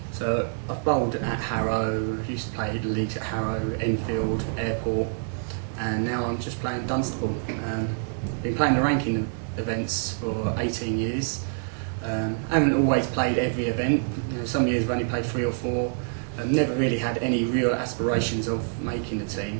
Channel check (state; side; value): silent; left; 61 dB below the other